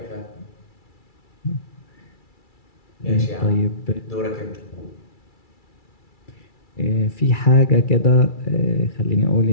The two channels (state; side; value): late; right; 2.3 ms